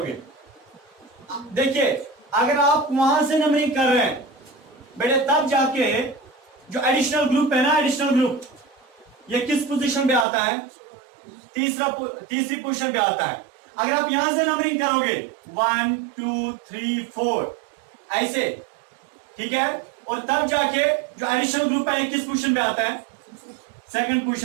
देखिए अगर आप वहां से नंबरिंग कर रहे हैं बेटे, तब जाके जो एडिशनल ग्रुप है ना, एडिशनल ग्रुप, ये किस पोजीशन पे आता है? तीसरी पोजीशन पे आता है। अगर आप यहां से नंबरिंग करोगे 1 2 3 4 ऐसे, ठीक है, और तब जाके जो एडिशनल ग्रुप है किस पोजीशन पे आता है? सेकंड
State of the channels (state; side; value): drops out; left; at 10.2 s